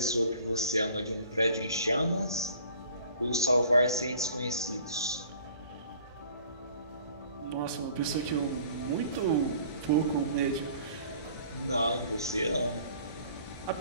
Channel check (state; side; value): inverted; both; correlation -0.51